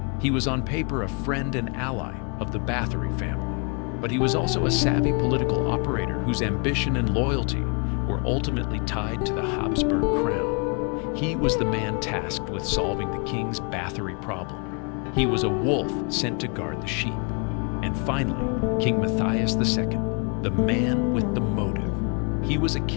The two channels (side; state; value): right; quieter; 35.6 dB